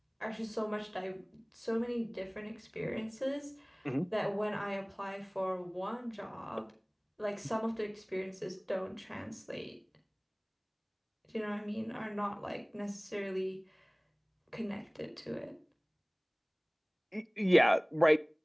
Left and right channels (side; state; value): both; identical; correlation 1.00